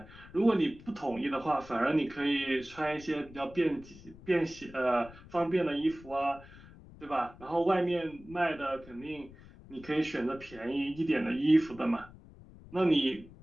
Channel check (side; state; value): left; noise; rumble, 20 dB below the sound